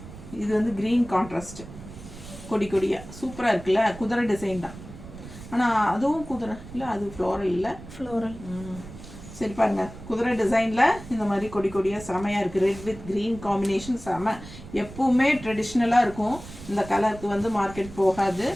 இது வந்து க்ரீன் கான்ட்ராஸ்ட், கொடியாக சூப்பராக இருக்குல்ல. குதிரை டிசைன் தான், ஆனால் அதுவும் குதிரை இல்லை, அது ஃப்ளோரல் இல்லை, ஃப்ளோரல். சரி பாருங்க, குதிரை டிசைனில் இந்த மாதிரி கொடியாக செமையாக இருக்குது. ரெட் வித் க்ரீன் காம்பினேஷன் செம. எப்பவுமே ட்ரெடிஷ்னலாக இருக்கும், இந்த கலருக்கு வந்து மார்க்கெட் போகாது.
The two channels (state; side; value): noise; right; rumble, 15 dB below the sound